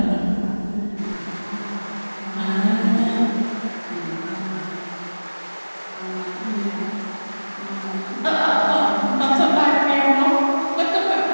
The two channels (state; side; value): inverted; both; correlation -1.00